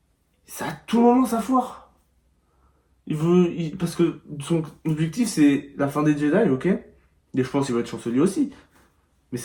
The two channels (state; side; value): identical; both; correlation 1.00